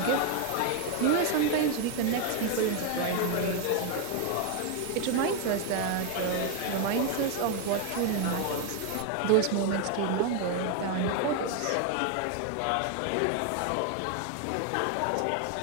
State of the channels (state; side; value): different; both; correlation 0.01